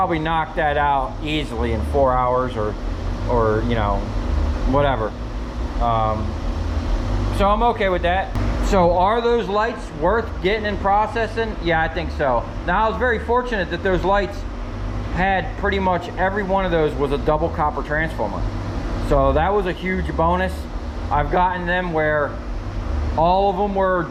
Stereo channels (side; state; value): both; identical; correlation 1.00